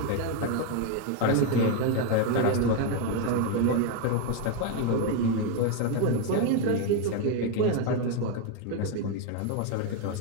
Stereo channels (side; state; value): both; different; correlation 0.01